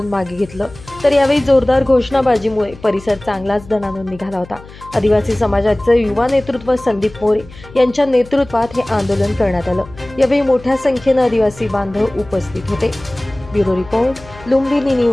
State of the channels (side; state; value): left; noise; hum, 19 dB below the sound